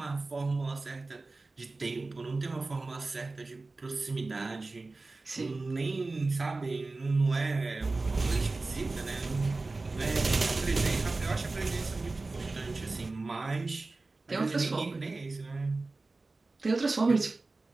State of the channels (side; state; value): left; quieter; 3.5 dB